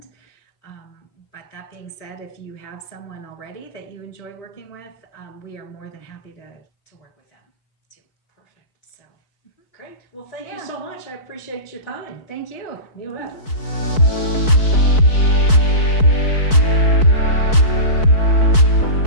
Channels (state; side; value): late; right; 4.6 ms